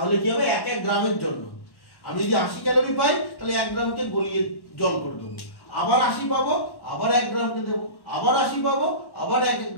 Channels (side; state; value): right; late; 1.1 ms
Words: কি হবে? 1 গ্রামের জন্য আমি যদি 80 ক্যালোরি পাই, তাহলে 1 গ্রামকে গলিয়ে জল করে দেবো, আবার 80 পাবো, আবার 1 গ্রামকে দেবো, আবার 80 পাবো, আবার 1